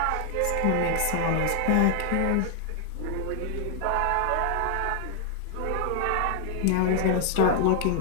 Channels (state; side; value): different; both; correlation 0.00